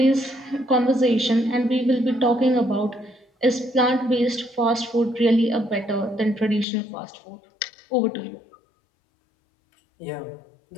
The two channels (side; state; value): right; drops out; at 6.7 s